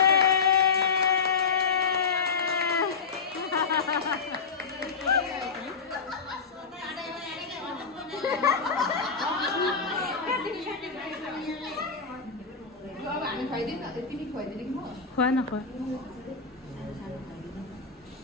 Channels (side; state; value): right; quieter; 5.3 dB